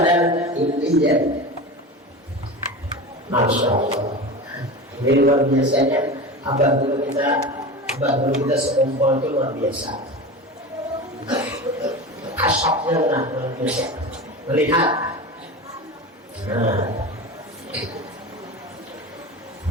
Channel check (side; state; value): both; normal; correlation 0.28